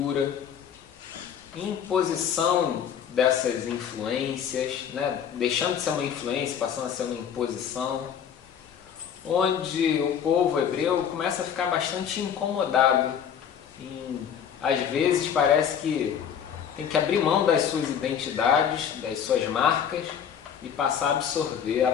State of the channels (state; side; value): quieter; right; 8.2 dB